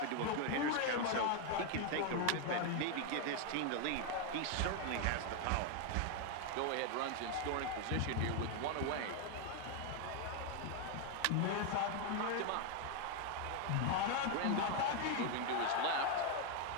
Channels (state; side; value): different; both; correlation 0.01